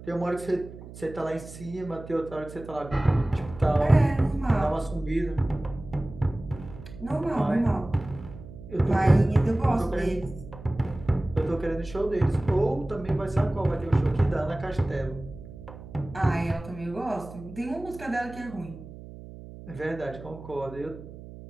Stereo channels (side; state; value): right; noise; hum, 15 dB below the sound